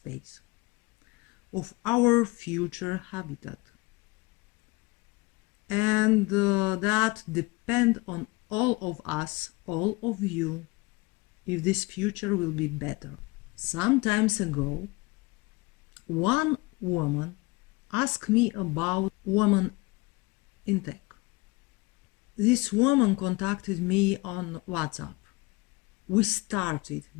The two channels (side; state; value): right; quieter; 23.9 dB